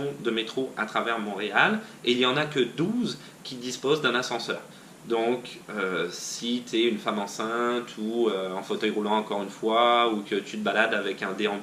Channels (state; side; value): identical; both; correlation 1.00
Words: de métro à travers Montréal et il n'y en a que 12 qui disposent d'un ascenseur. Donc, si tu es une femme enceinte ou en fauteuil roulant encore une fois, ou que tu te balades avec un